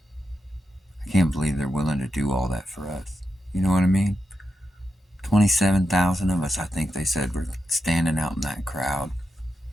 I can't believe they're willing to do all that for us. You know what I mean? 27,000 of us, I think they said, were standing out in that crowd.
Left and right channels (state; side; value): normal; both; correlation 0.87